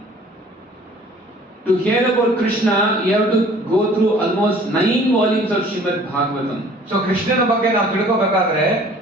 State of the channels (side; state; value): both; normal; correlation 0.52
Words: to hear about Krishna, you have to go through almost 9 volumes of Srimad Bhagavatam. So ಕೃಷ್ಣನ ಬಗ್ಗೆ ನಾವು ತಿಳ್ಕೋಬೇಕಾದ್ರೆ